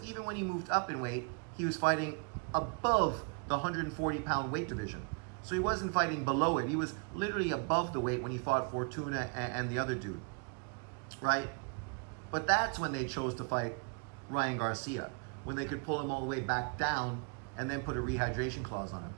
even when he moved up in weight, he was fighting above the 140 pound weight division. So he wasn't fighting below it. He was literally above the weight when he fought Fortuna and the other dude, right? But that's when they chose to fight Ryan Garcia, when they could pull him all the way back down and then put a rehydration clause on him.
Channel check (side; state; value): left; quieter; 37.1 dB